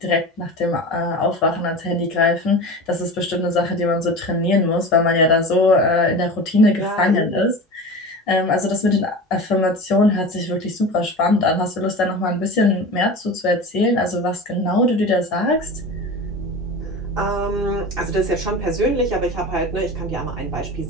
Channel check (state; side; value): normal; both; correlation 0.32